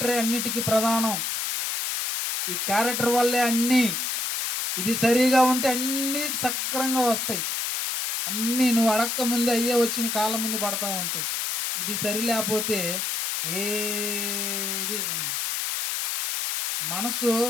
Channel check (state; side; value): noise; left; hiss, 1 dB below the sound